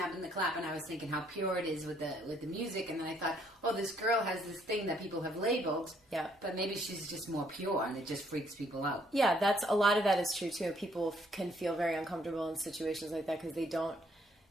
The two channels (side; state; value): both; normal; correlation 0.67